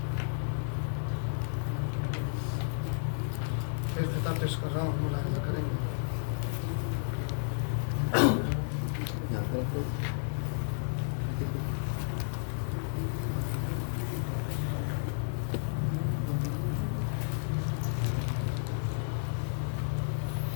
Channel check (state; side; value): silent; right; 56 dB below the other